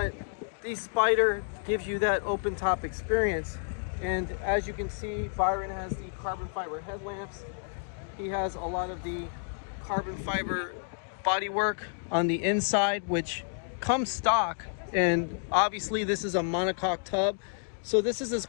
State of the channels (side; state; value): right; silent; digital silence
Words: the Spider gives you that open top experience, and as you can see, Byron has the carbon fiber headlamps. He has a lot of the carbon fiber bodywork on the inside, which comes stock, and obviously this is a monocoque tub, so this is as